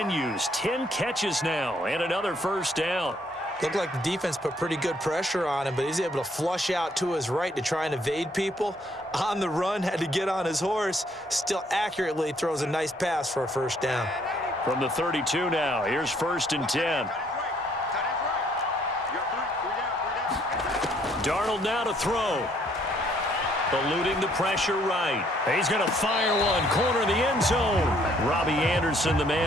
10 catches now and another 1st down. Looked like the defense put pretty good pressure on him, but he's able to flush out to his right to try and evade people. On the run, had to get on his horse. Still accurately throws a nice pass for a 1st down. From the 32 now, here's 1st and 10. Darnold now to throw. Eluding the pressure right. He's going to fire one. Corner of the end zone. Robbie Anderson, the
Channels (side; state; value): both; normal; correlation 0.66